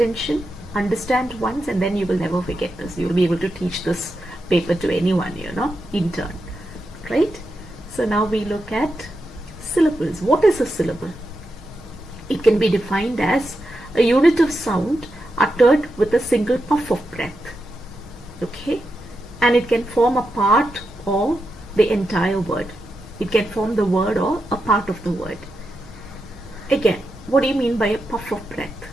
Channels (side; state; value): both; normal; correlation 0.87